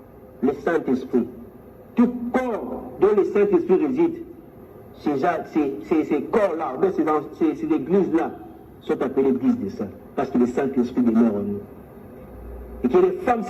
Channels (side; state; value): both; identical; correlation 1.00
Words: le Saint-Esprit, tout corps dont le Saint-Esprit réside, ces corps-là, ces églises-là, sont appelées églises des saints, parce que le Saint-Esprit demeure en nous. Et que les femmes